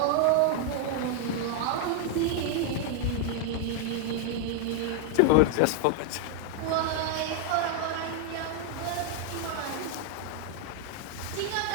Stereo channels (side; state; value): both; different; correlation 0.00